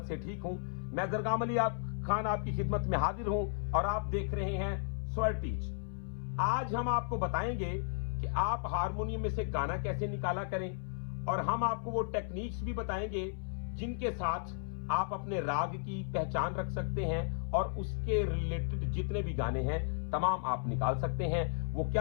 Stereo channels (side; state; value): right; silent; 55 dB below the other